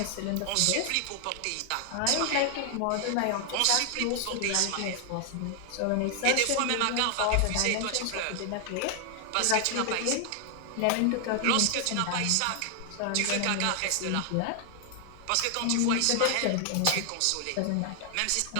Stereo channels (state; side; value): different; both; correlation 0.00